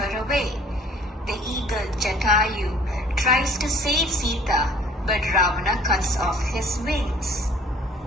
away. The eagle Jatayu tries to save Sita, but Ravana cuts off his wings.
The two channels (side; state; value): both; normal; correlation 0.53